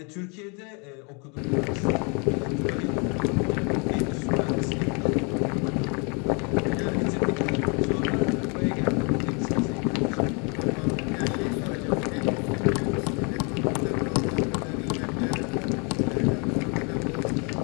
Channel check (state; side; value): quieter; right; 33.8 dB